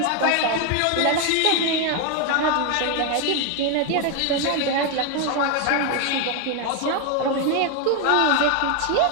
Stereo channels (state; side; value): different; both; correlation 0.01